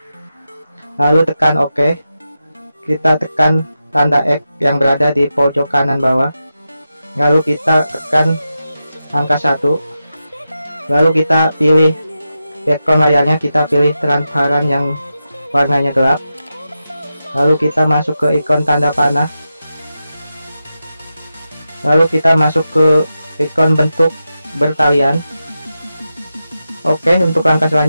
Lalu tekan OK. Kita tekan tanda X yang berada di pojok kanan bawah. Lalu kita tekan angka 1. Lalu kita pilih background layarnya, kita pilih transparan yang warnanya gelap. Lalu kita masuk ke ikon tanda panah. Lalu kita masuk ke ikon bentuk bertalian. Oke, untuk langkah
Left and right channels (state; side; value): inverted; both; correlation -0.90